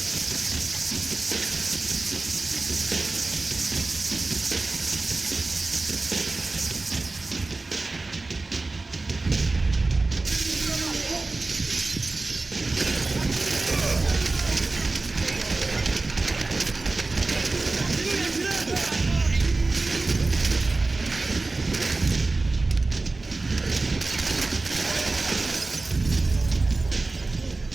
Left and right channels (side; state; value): left; quieter; 3.4 dB